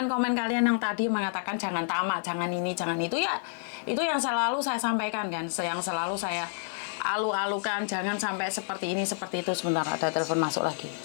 kalian yang tadi mengatakan jangan tamak, jangan ini, jangan itu ya. Itu yang selalu saya sampaikan kan, yang selalu saya alu-alukan, jangan sampai seperti ini, seperti itu. Sebentar, ada telepon masuk lagi.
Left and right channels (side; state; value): right; silent; digital silence